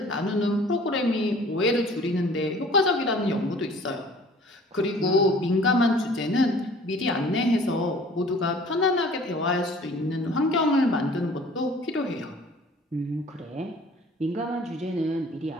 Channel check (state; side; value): normal; both; correlation 0.50